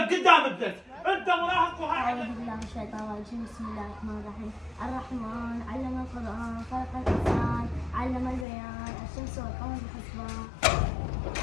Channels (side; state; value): right; drops out; at 8.5 s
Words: قدام ابنك، انت مراهق وهاي أعوذ بالله من الشيطان الرجيم. بسم الله الرحمن الرحيم. الرحمن علم القرآن، خلق الإنسان، علم البيان، الشمس والقمر بحسبان.